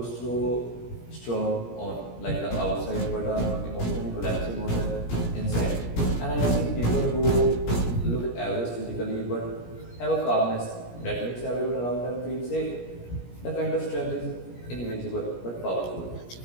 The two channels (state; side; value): late; right; 17 ms